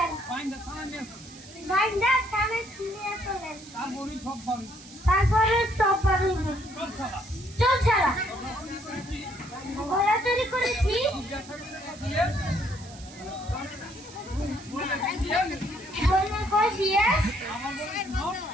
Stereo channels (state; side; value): noise; right; hiss, 19 dB below the sound